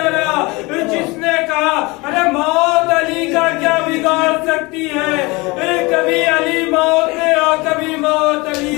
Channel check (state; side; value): quieter; right; 24.7 dB